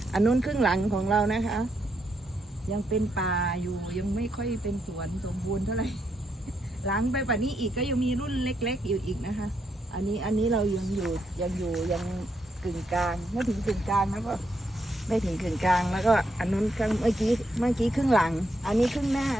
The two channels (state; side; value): normal; both; correlation 0.79